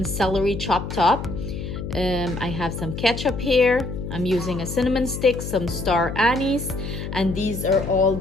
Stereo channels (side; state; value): left; noise; hum, 7 dB below the sound